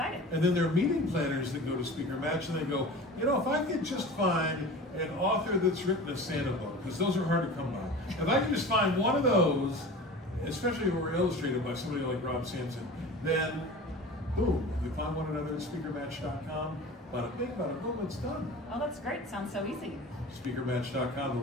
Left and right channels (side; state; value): both; normal; correlation 0.36